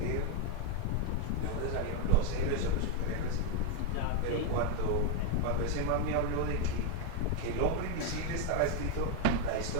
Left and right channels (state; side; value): different; both; correlation 0.01